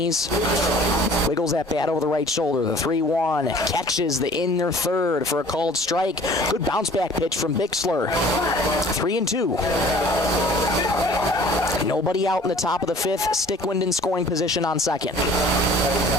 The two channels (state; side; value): normal; both; correlation 0.50